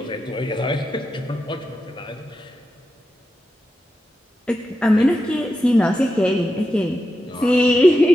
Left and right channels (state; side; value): normal; both; correlation 0.89